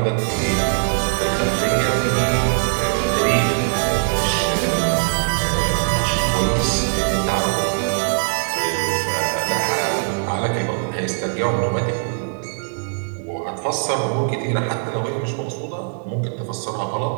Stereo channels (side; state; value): left; silent; digital silence